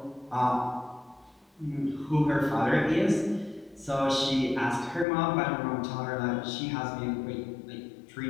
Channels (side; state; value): right; drops out; at 5.1 s